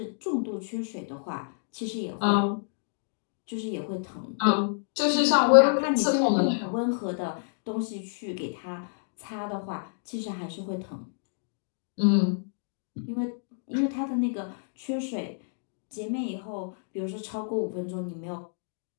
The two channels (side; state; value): right; silent; digital silence